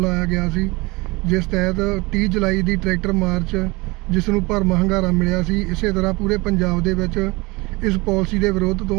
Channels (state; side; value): quieter; left; 24.3 dB